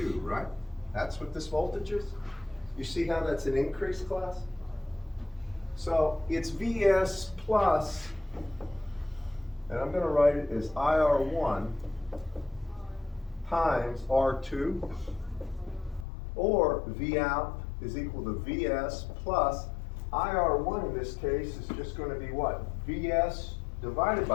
right? That's what this voltage is. You see how that's an increase, class? So it's VS plus, and I'm going to write it as IR1 times R2, or V out is equal to VS plus IR1 in this case is just going to be what? VS divided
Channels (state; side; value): drops out; right; at 16.1 s